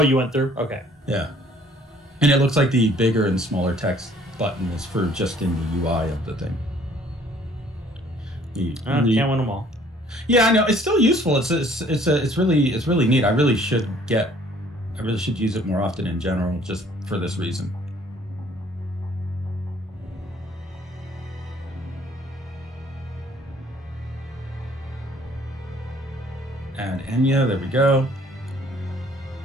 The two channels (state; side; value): normal; both; correlation 0.58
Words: you went through? Okay. Yeah. And it looks like the bigger and smaller text button is for just in the UI of the thing. Can't win them all. Yeah, I know. It's still useful. It's really neat. I really should use it more often in general, just for this reason. Add Enya, there we go.